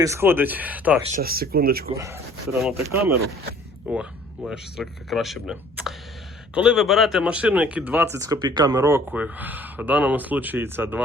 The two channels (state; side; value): normal; both; correlation 0.54